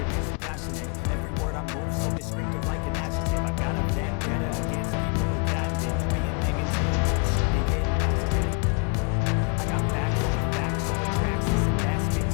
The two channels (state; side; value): quieter; right; 34.5 dB